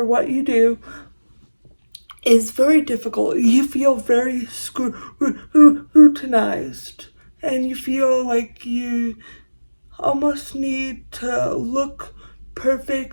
what you do, is very difficult. You feel very scrutinized, and you feel like you almost need to look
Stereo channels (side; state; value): both; inverted; correlation -1.00